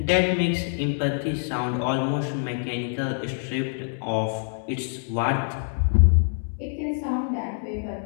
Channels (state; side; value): silent; right; 61 dB below the other